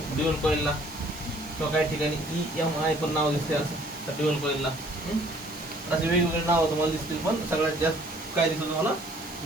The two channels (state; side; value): normal; both; correlation 0.57